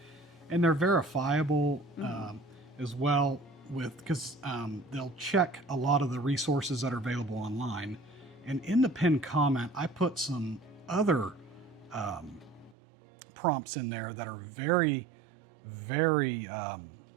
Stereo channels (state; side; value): drops out; left; at 12.8 s